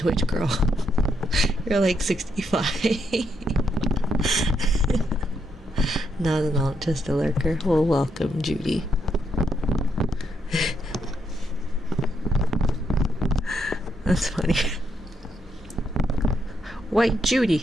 girl? You're like 65. Not an alt, just a lurker. Well, welcome, Judy. That's funny. White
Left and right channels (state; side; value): normal; both; correlation 0.77